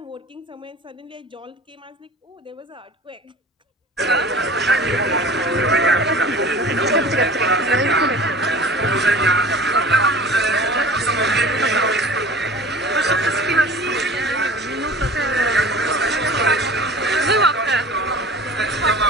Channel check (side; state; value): both; normal; correlation 0.42